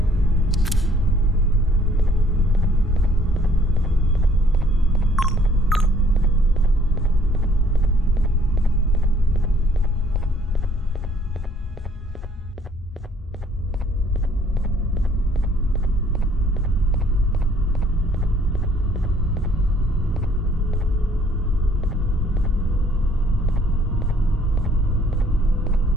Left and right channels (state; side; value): normal; both; correlation 0.61